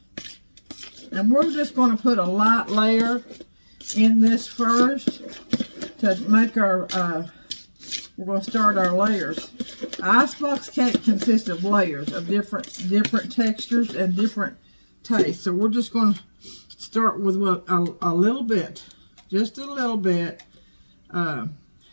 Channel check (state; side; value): inverted; both; correlation -1.00